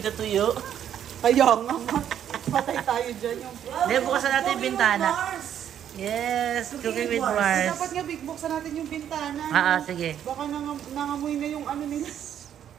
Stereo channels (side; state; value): left; quieter; 9.8 dB